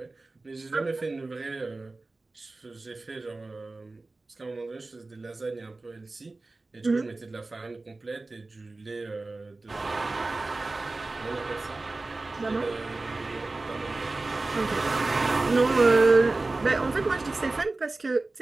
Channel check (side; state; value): left; quieter; 3.3 dB